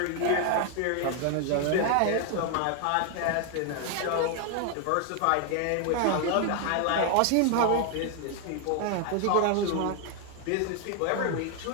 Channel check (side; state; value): both; different; correlation 0.00